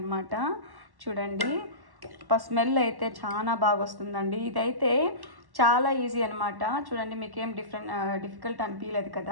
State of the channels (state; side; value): late; left; 1.1 ms